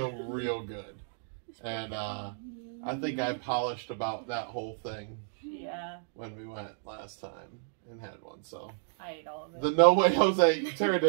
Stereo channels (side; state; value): left; silent; digital silence